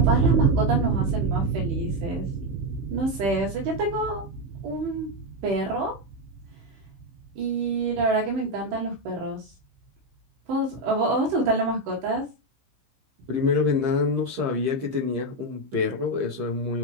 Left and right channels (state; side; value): late; left; 15 ms